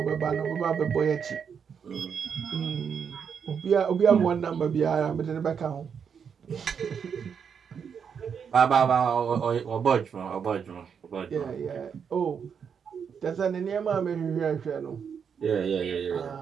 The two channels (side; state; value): left; quieter; 7.0 dB